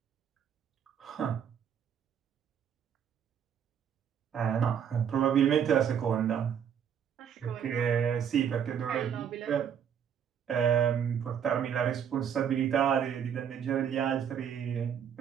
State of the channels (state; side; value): quieter; left; 8.3 dB